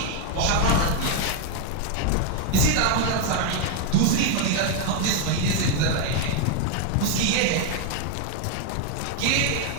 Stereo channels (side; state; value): both; different; correlation 0.01